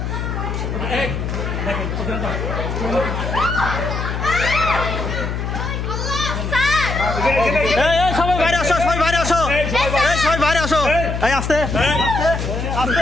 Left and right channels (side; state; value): left; noise; hum, 3 dB below the sound